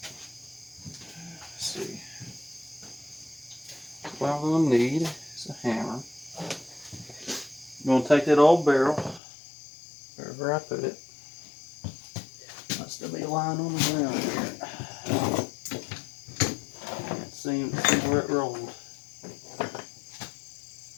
Let's see. What I'm going to need is a hammer. I'm going to take that old barrel, wherever I put it. Must still be lying on the ground here. Can't seem to see where it rolled.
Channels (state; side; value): drops out; right; at 9.2 s